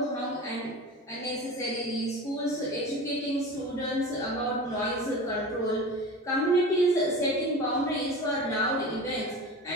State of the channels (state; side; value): normal; both; correlation 0.32